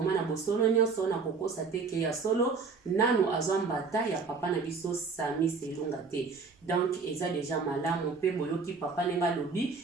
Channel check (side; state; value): left; quieter; 4.8 dB